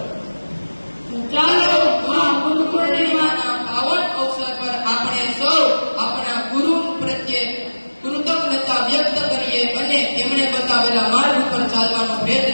ચાલો આ ગુરુ પૂર્ણિમાના પાવન અવસર પર આપણે સૌ આપણા ગુરુ પ્રત્યે કૃતજ્ઞતા વ્યક્ત કરીએ અને તેમણે બતાવેલા માર્ગ પર ચાલવાનો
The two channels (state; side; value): inverted; both; correlation -1.00